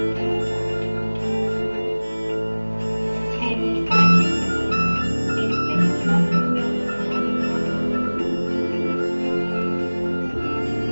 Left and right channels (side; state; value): both; inverted; correlation -1.00